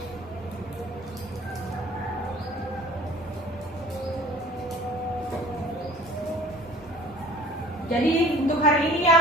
Jadi untuk hari ini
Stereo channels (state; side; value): normal; both; correlation 0.48